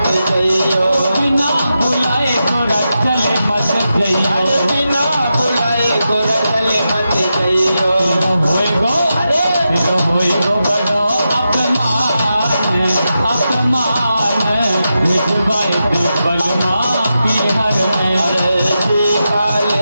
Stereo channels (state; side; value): inverted; both; correlation -0.89